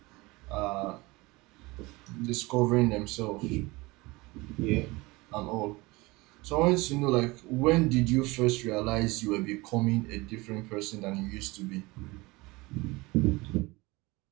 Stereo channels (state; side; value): quieter; left; 22.9 dB